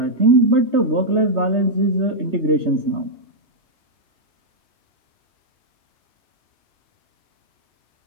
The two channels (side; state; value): left; late; 3.2 ms